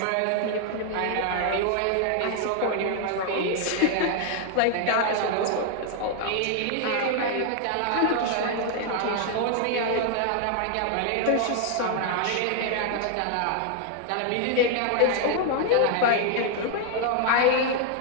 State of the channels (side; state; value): both; different; correlation 0.00